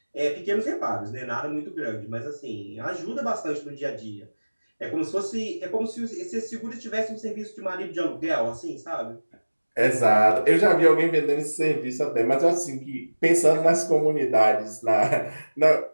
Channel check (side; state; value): both; inverted; correlation -1.00